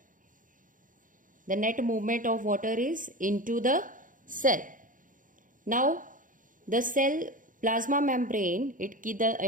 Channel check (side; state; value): left; late; 0.39 ms